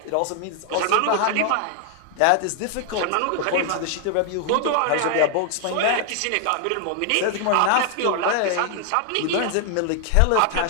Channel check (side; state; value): both; different; correlation 0.00